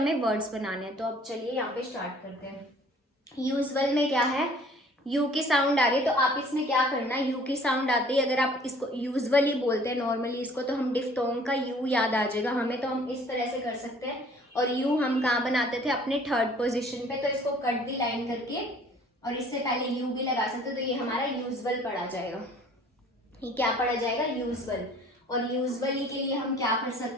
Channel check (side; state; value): both; normal; correlation 0.53